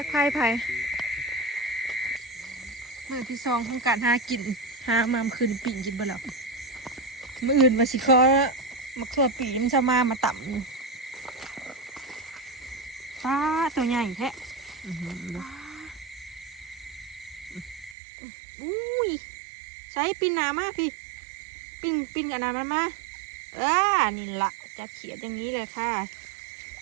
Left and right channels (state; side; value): drops out; left; at 17.9 s